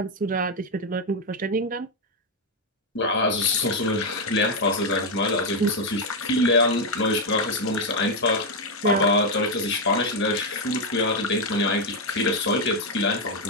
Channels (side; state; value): both; normal; correlation 0.03